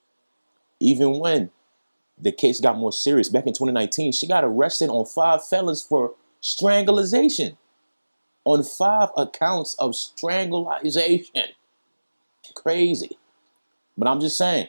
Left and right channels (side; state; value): both; inverted; correlation -1.00